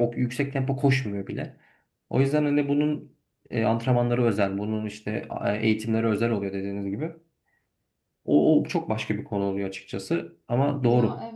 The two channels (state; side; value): identical; both; correlation 1.00